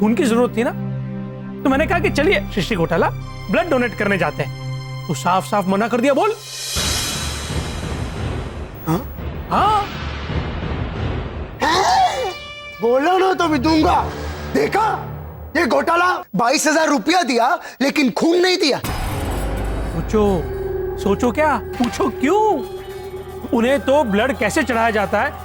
की जरूरत थी ना, तो मैंने कहा कि चलिए सृष्टि घोटाला ब्लड डोनेट करने जाते हैं। तो साफ साफ मना कर दिया। बोल। हाँ बोलो ना तो भी दूंगा। देखा, ये घोटाला 22,000 रुपया दिया लेकिन खून नहीं दिया। सोचो क्या, पूछो क्यों? उन्हें तो ब्लड कैसे चढ़ाया जाता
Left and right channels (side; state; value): both; identical; correlation 1.00